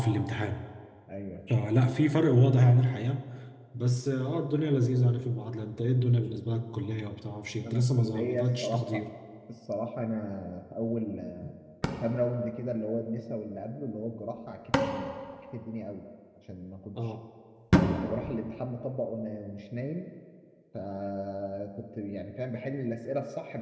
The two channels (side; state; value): both; identical; correlation 1.00